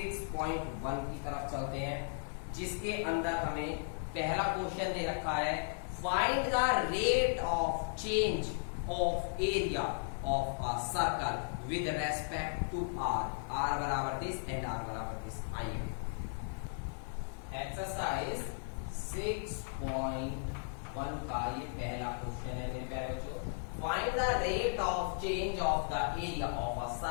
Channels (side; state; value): right; silent; 54 dB below the other